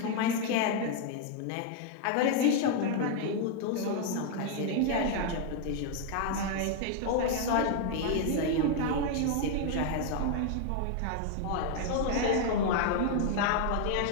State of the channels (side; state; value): both; different; correlation 0.00